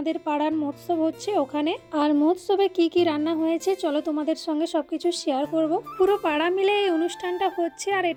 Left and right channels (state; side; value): identical; both; correlation 1.00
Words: পাড়ার মহোৎসব হচ্ছে ওখানে। আর মহোৎসবে কি কি রান্না হয়েছে চলো তোমাদের সঙ্গে সবকিছু শেয়ার করব। পুরো পাড়া মিলে এই অনুষ্ঠানটা হচ্ছে, আর